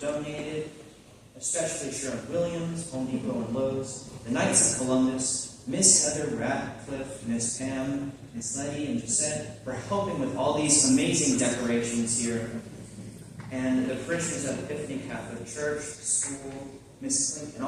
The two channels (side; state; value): both; identical; correlation 1.00